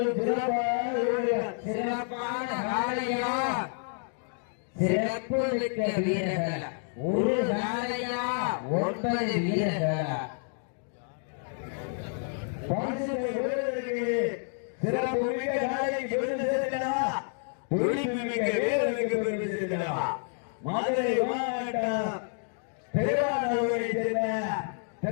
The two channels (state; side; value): silent; right; 58 dB below the other